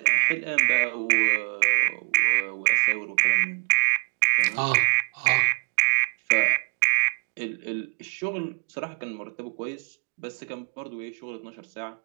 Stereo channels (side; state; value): left; silent; 62 dB below the other